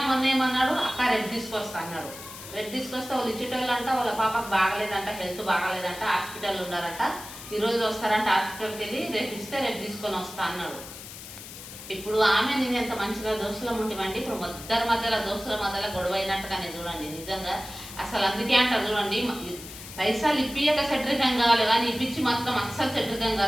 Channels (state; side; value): noise; left; hiss, 13 dB below the sound